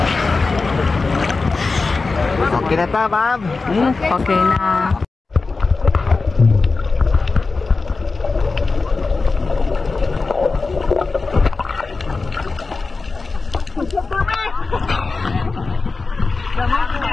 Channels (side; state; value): right; quieter; 4.0 dB